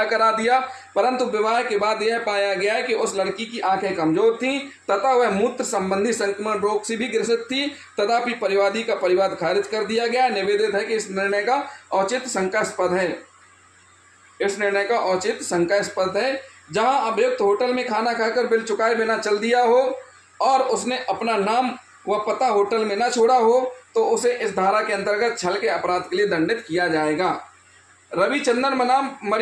करा दिया, परंतु विवाह के बाद यह पाया गया कि उस लड़की की आंखें कमजोर थीं तथा वह मूत्र संबंधी संक्रमण रोग से भी ग्रसित थी। तथापि परिवादी का परिवाद खारिज कर दिया गया। निवेदित है कि इस निर्णय का औचित्य शंकास्पद है। जहां अभियुक्त होटल में खाना खाकर बिल चुकाए बिना चल दिया हो और उसने अपना नाम व पता होटल में न छोड़ा हो तो उसे इस धारा के अंतर्गत छल के अपराध के लिए दंडित किया जाएगा। रविचंद्रन बनाम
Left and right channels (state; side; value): identical; both; correlation 1.00